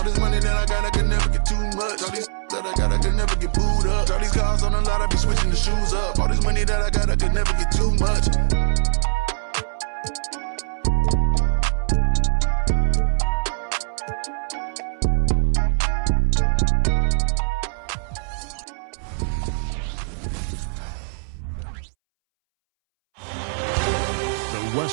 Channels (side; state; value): left; silent; 64 dB below the other